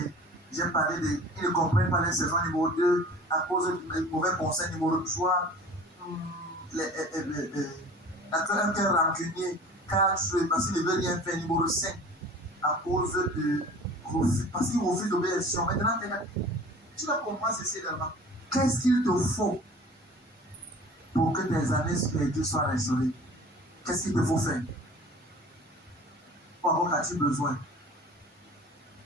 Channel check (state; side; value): normal; both; correlation 0.44